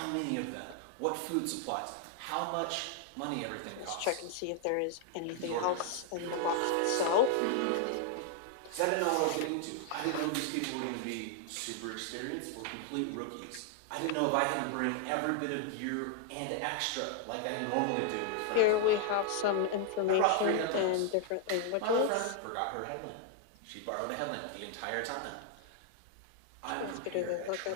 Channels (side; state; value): both; different; correlation 0.00